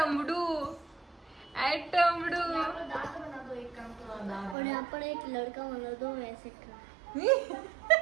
आय टमडू और यहाँ पर एक लड़का बना दो वैसे का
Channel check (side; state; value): left; drops out; at 4.5 s